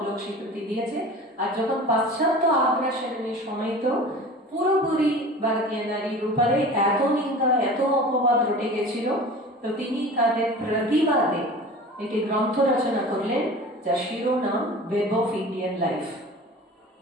লোক স্বীকৃতি দিয়েছে। আর যখন পাশ্চাত্য আগ্রাসনের সময় তো পুরোপুরি ভারতীয় নারীর উপরে এত নিন্দা, এত অপবাদ রটে গেছিল, তো তিনি তাদের প্রতিবাদে একটি গ্রন্থ রচনা করলেন যার শিরোনাম ওয়েব অফ ইন্ডিয়ান লাইফ।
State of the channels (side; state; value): both; normal; correlation 0.38